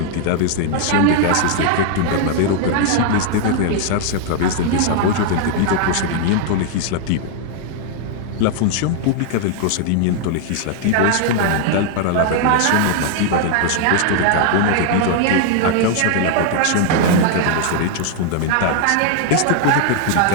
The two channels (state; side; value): different; both; correlation 0.00